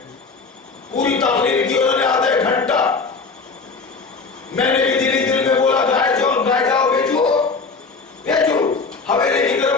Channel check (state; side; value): quieter; right; 4.5 dB